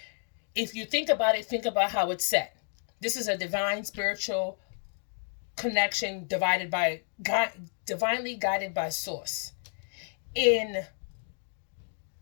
if you think about it, think about how it's set. This is a divine spiritual connection divinely guided by source. In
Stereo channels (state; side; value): silent; right; 57 dB below the other